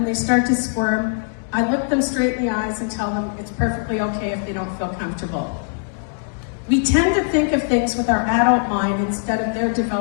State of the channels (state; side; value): silent; right; digital silence